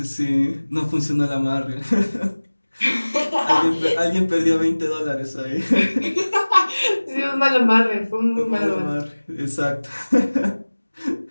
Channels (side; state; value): both; inverted; correlation -1.00